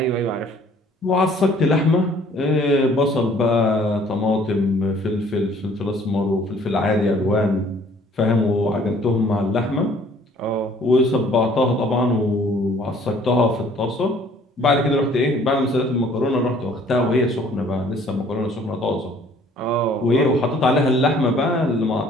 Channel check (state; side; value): normal; both; correlation 0.57